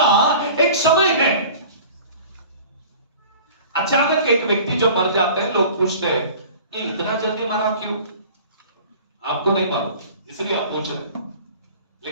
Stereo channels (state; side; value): inverted; both; correlation -0.43